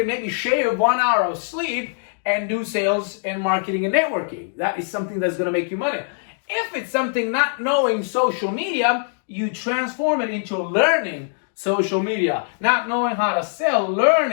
maybe shave 1 hour of sleep and do sales and marketing and networking. That is something that's going to make you money. If it's something not knowing social media, you transform it into learning social media. Not knowing how to sell,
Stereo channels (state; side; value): silent; right; 64 dB below the other